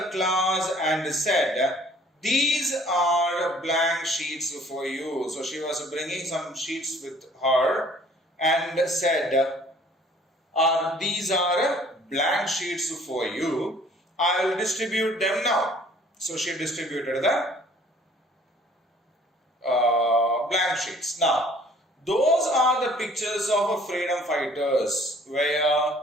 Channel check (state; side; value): normal; both; correlation 0.55